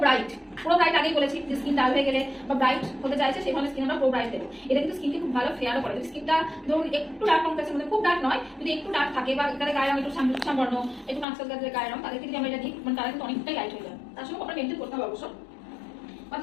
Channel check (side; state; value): right; drops out; at 11.2 s